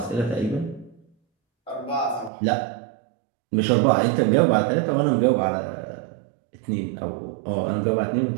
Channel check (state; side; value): drops out; left; at 2.3 s